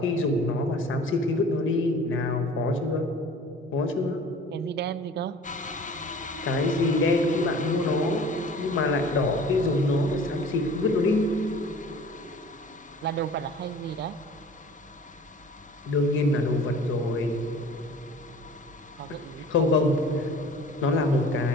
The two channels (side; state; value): both; normal; correlation 0.45